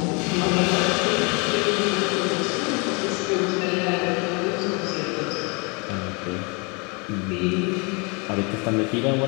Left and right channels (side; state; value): right; quieter; 31.1 dB